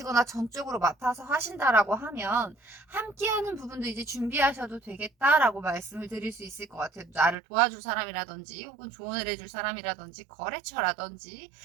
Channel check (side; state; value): left; drops out; at 7.4 s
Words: 전적으로 맡아서 하신다라고 하면 함께 하는 부분도 이제 준비하셔도 되겠다라고 말씀을 드릴 수 있을 것 같아요. 나를 도와줄 사람이라든지 혹은 조언을 해줄 사람이라든지 거래처라든지,